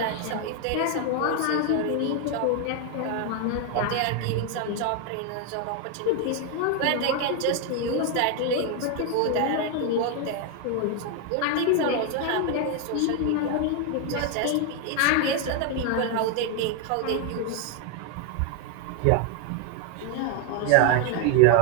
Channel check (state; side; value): different; both; correlation 0.01